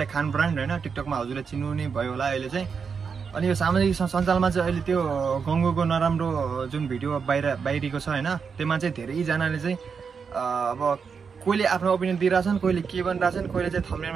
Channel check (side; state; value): left; quieter; 5.9 dB